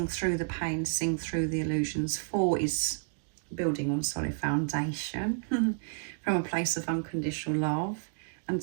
through the pain, seeing through the illusions. 4 is building on solid foundation from a place of unconditional love. And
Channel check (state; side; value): silent; left; digital silence